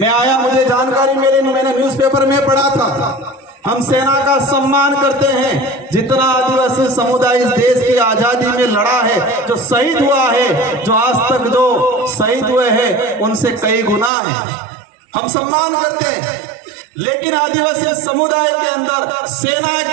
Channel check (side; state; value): left; drops out; at 14.1 s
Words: आया, मुझे जानकारी मिली, मैंने न्यूज़पेपर में पढ़ा था। हम सेना का सम्मान करते हैं, जितना आदिवासी समुदाय इस देश की आजादी में लड़ा है, जो शहीद हुआ है, जो आज तक जो शहीद हुए हैं उनसे कई गुना है, हम सम्मान करते हैं। लेकिन आदिवासी समुदाय के अंदर सेना